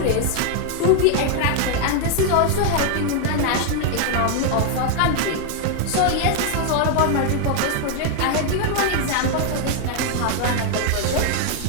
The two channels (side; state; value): both; different; correlation 0.00